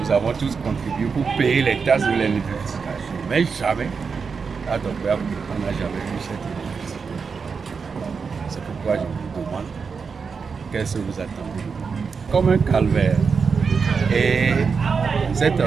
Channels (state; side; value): quieter; left; 5.4 dB